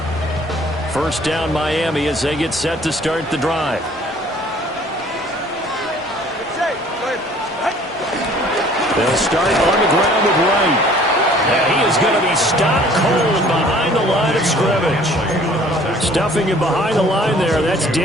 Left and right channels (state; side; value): normal; both; correlation 0.54